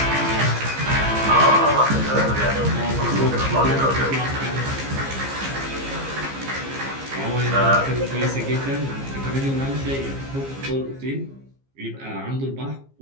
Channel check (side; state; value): left; late; 15 ms